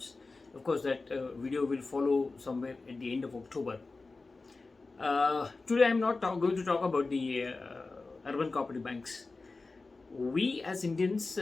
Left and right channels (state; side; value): quieter; right; 3.7 dB